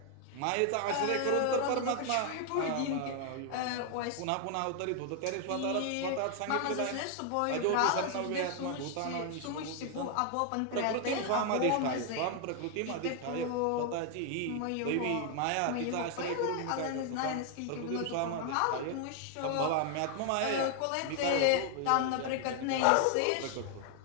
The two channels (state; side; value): different; both; correlation 0.00